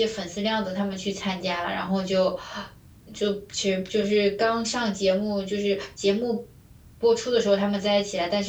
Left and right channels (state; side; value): identical; both; correlation 1.00